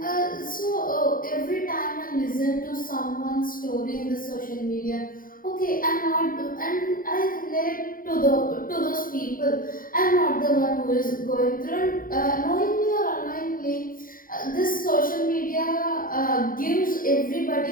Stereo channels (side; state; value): right; late; 0.41 ms